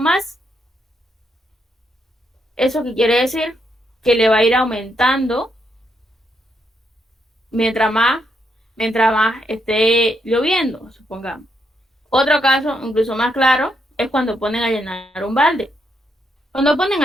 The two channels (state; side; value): normal; both; correlation 0.78